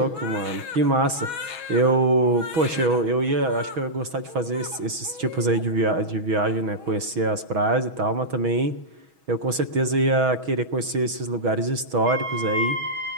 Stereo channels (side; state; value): left; late; 6.2 ms